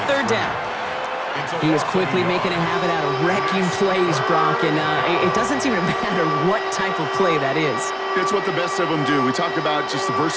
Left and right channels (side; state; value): both; identical; correlation 1.00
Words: 3rd down. He was quickly making a habit out of wrecking plays, Brock, and it doesn't seem to matter what type of play that is. It's what the best of them do. We talk about just the